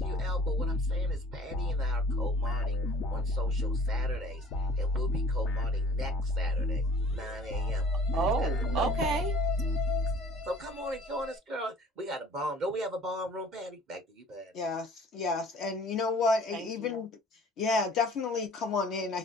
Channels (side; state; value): both; normal; correlation 0.51